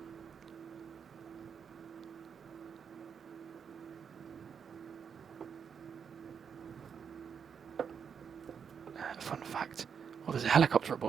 Fun fact, well, there's a helicopter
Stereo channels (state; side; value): quieter; left; 6.9 dB